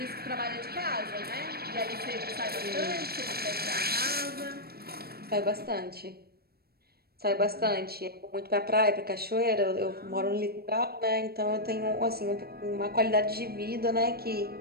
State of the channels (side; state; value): left; late; 0.45 ms